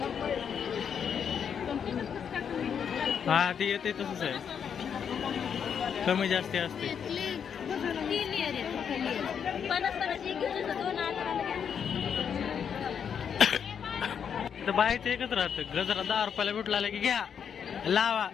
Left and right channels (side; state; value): right; quieter; 7.6 dB